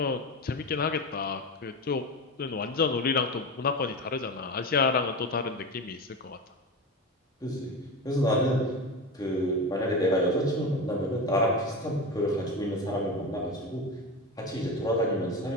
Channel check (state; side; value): normal; both; correlation 0.23